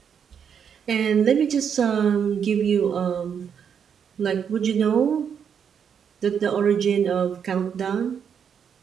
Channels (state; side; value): quieter; left; 7.5 dB